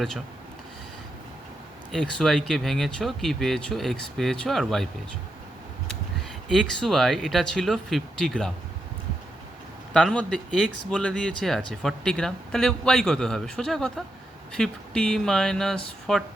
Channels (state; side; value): normal; both; correlation 0.84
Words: এক্স ওয়াইকে ভেঙেছো, কি পেয়েছো? এক্স পেয়েছো আর ওয়াই পেয়েছো। এক্স ওয়াই এটা ছিল 50 গ্রাম, তার মধ্যে এক্স বলে দিয়েছে আছে 40 গ্রাম, তাহলে ওয়াই কত হবে? সোজা কথা, 50 মাইনাস